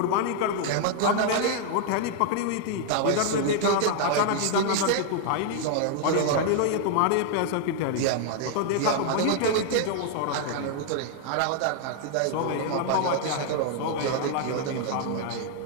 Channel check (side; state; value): both; different; correlation 0.00